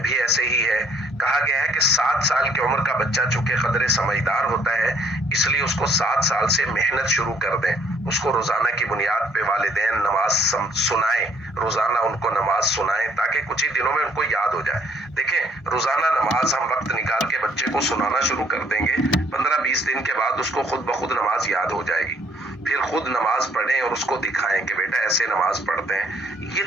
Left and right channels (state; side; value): normal; both; correlation 0.63